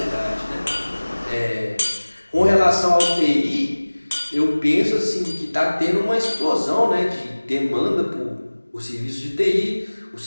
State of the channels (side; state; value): both; inverted; correlation -1.00